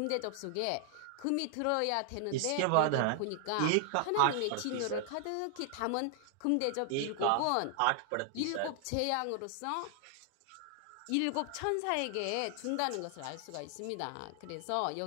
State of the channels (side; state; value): both; different; correlation 0.00